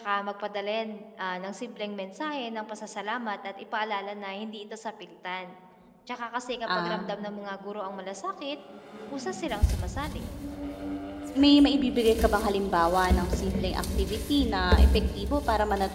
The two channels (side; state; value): both; identical; correlation 1.00